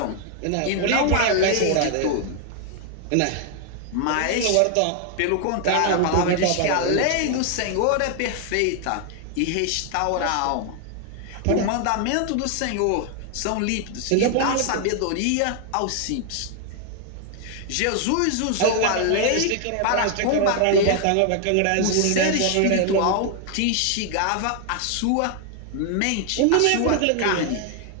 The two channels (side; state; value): both; different; correlation 0.00